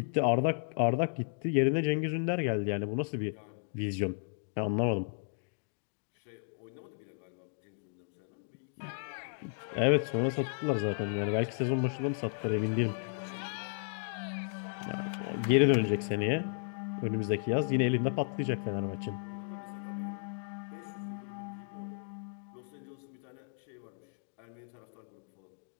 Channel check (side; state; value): right; silent; digital silence